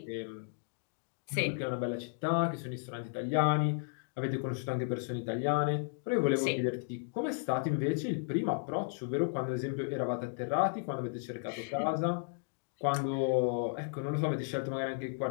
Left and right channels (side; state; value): right; silent; digital silence